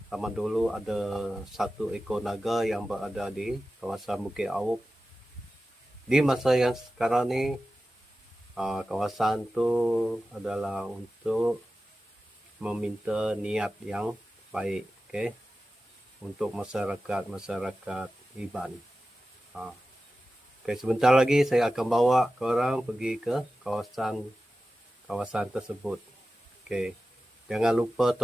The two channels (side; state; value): both; normal; correlation 0.94